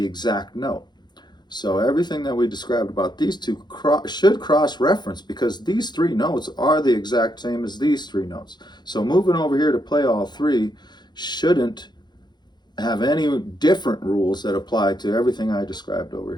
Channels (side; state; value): right; late; 0.21 ms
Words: exact note. So everything that we described about these two should cross-reference because these three notes are the exact same as these three notes. So moving over here to play all three shouldn't have any different rules that apply to everything I described over